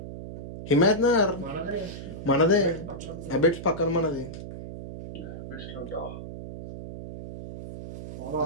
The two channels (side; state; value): right; noise; hum, 10 dB below the sound